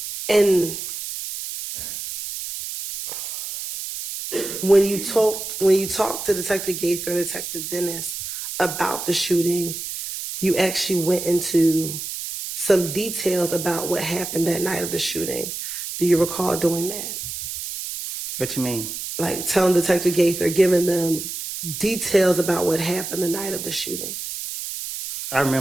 And when you talked to Detective Gaither and Detective Dennis about the shooting, you actually went into some details about what happened that night of the shooting. Do you recall doing that? What you mean? Like telling Detective Gaither, giving them details about what happened the night of the shooting. I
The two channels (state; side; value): noise; right; hiss, 7 dB below the sound